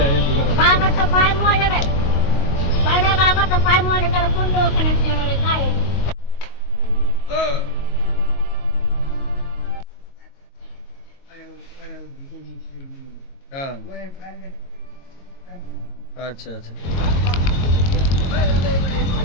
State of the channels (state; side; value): late; right; 22 ms